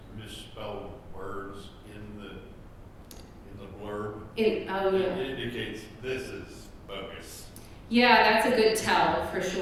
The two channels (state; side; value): identical; both; correlation 1.00